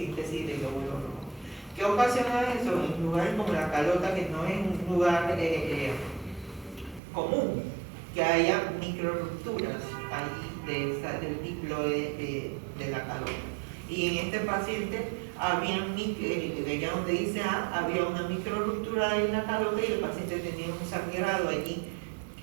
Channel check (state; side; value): drops out; left; at 7.0 s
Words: de glóbulos rojos. ¿Qué ocasiona eso? En lugares como la calota, que no es un lugar común, que haya microrupturas ahí del diploide de la calota. Y en este paciente allá donde dice A, había una microruptura en la calota y el paciente tenía un sangrado allí